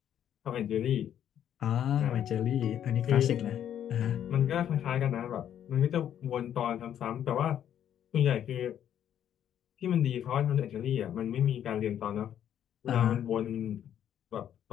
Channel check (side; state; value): right; quieter; 10.0 dB